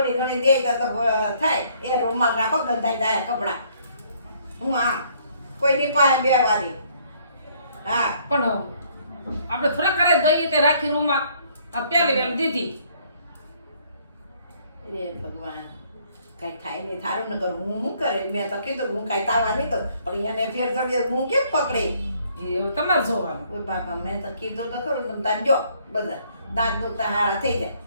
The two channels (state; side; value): inverted; both; correlation -0.64